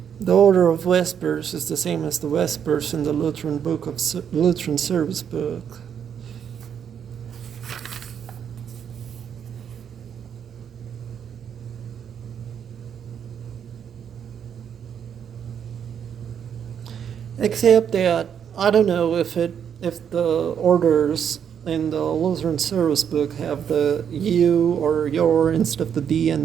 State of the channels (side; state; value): left; quieter; 8.2 dB